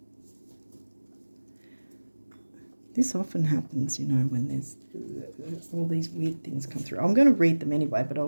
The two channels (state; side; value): inverted; both; correlation -1.00